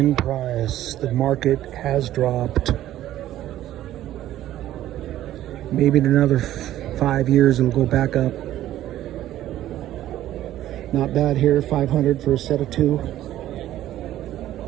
price. The market has dropped. Maybe in another 5 years it'll go back up. Not bad here, 500 for a set of two.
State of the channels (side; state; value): left; quieter; 13.3 dB